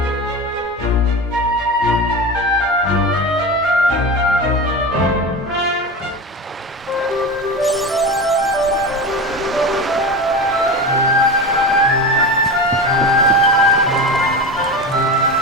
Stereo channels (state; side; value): normal; both; correlation 0.25